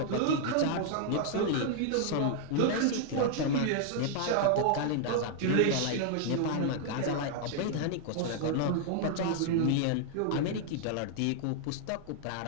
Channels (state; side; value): different; both; correlation 0.00